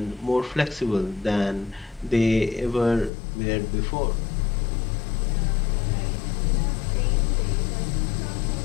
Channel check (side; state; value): right; drops out; at 3.1 s